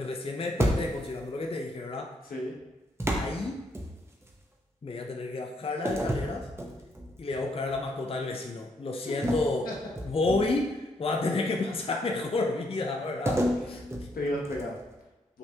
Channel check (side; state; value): both; normal; correlation 0.73